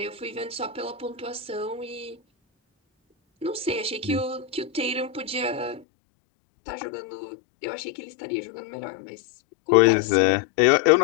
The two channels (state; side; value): drops out; right; at 5.9 s